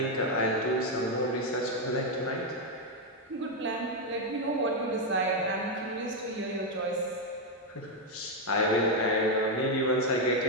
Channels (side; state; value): both; normal; correlation 0.03